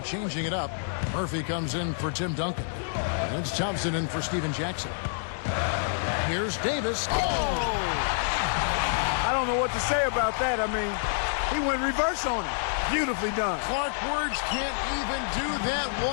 it up. Murphy comes in for Tim Duncan. And it's Thompson in for Steven Jackson. Here's Davis. Oh! I don't know what to say about that. I mean, he went reverse on it. Beautifully done. Clark Words can't even do that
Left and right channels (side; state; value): right; silent; digital silence